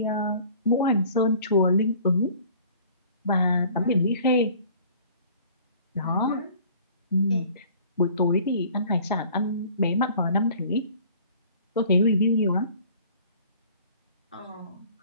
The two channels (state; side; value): inverted; both; correlation -0.50